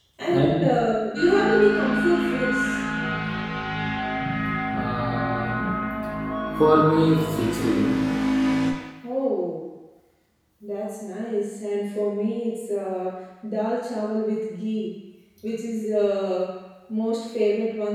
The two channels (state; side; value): identical; both; correlation 1.00